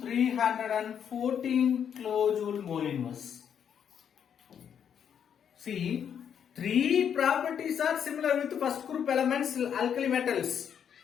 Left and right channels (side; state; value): right; quieter; 8.3 dB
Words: kilojoule mole inverse. See, three properties are similar with first group elements, alkali metals.